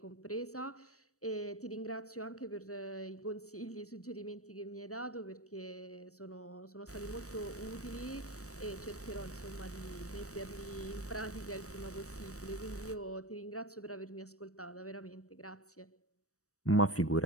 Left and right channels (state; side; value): late; right; 0.65 ms